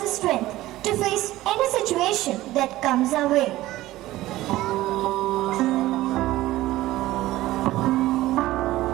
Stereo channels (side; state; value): left; quieter; 16.4 dB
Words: strength to face any situation that comes our way.